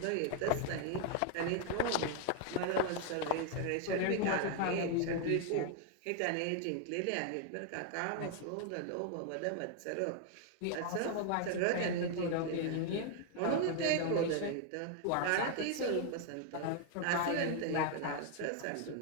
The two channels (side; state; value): both; different; correlation 0.00